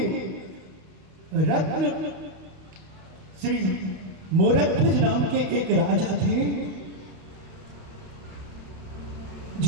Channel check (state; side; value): late; left; 32 ms